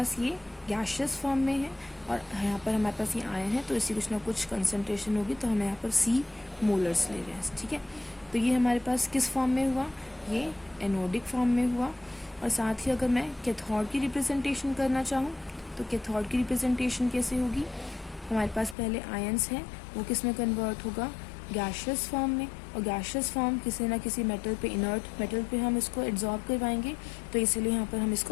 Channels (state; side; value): drops out; right; at 18.8 s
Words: ये गैशियस फॉर्म में है, और यहाँ पर हमारे पास ये आयन है, तो इसी कुछ ना कुछ कंसनट्रेशन होगी, तो हम यहाँ पर C मोलर्स ले रहे हैं, ठीक है। तो ये हमारे पास किस फॉर्म में हुआ, ये एनोडिक फॉर्म में हुआ। और साथ ही अगर मैं कैथोड की रिप्रेजेंटेशन करना चाहूँ, तो कैथोड की रिप्रेजेंटेशन कैसे होगी, हमारे पास पहले आयंस है, वो किस में कन्वर्ट होगा, गैशियस फॉर्म में, और गैशियस फॉर्म किसी ना किसी मेटल पे, इनर्ट मेटल पे हम इसको एब्जॉर्ब करवाएंगे, तो इसीलिए यहाँ पर हम